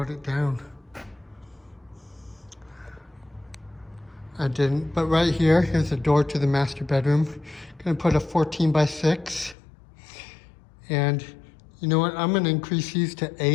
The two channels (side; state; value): right; drops out; at 9.6 s